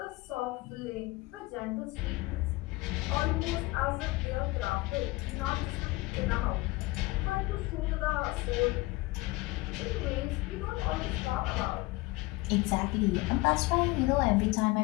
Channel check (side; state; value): right; quieter; 21.4 dB